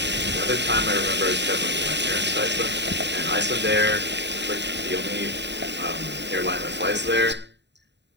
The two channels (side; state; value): left; late; 0.51 ms